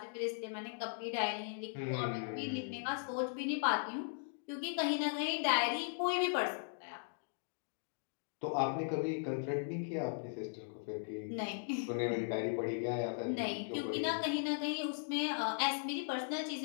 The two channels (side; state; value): right; silent; digital silence